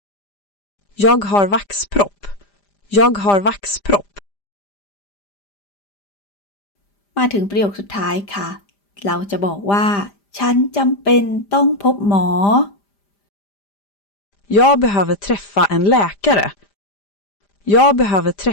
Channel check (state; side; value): late; right; 5.0 ms